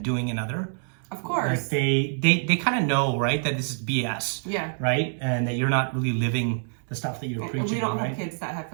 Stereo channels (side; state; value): left; silent; digital silence